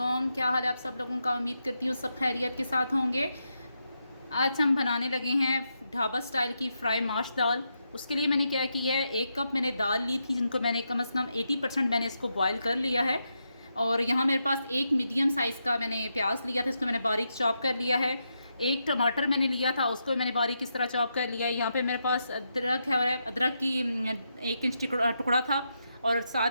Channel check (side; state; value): both; inverted; correlation -0.84